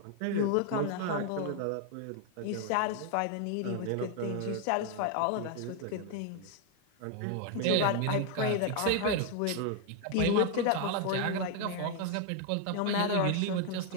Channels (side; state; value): both; different; correlation 0.00